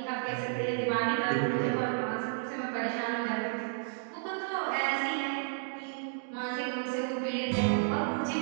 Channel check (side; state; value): left; silent; digital silence